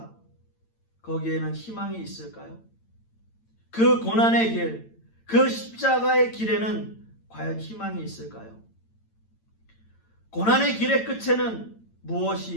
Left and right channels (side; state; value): right; late; 8.9 ms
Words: 거기에는 희망이 있을까요? 그 고난의 길, 그 십자가의 길에는 과연 희망이 있을까요? 고난의 길의 끝에는